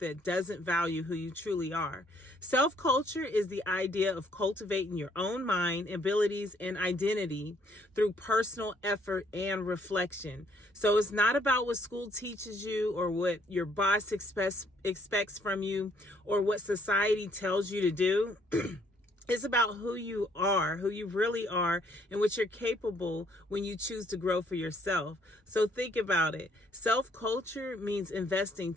doesn't value who you truly are. Self-culture is the idea of cultivating your own mind, abilities, and identity through personal effort and reflection. So it's not about what school teaches you or what your boss expects from you or what society tells you to do. It's about who you are, who you really are, and what you're capable when you choose to grow for yourself. So think about it. Self-culture means investing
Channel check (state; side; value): normal; both; correlation 0.66